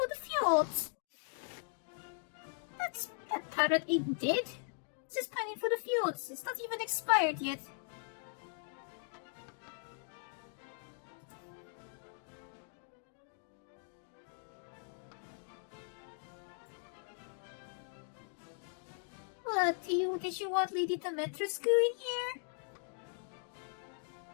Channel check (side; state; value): right; silent; 52 dB below the other